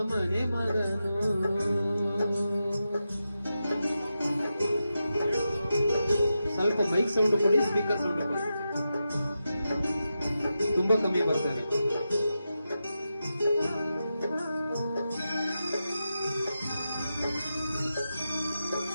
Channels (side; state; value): both; inverted; correlation -0.89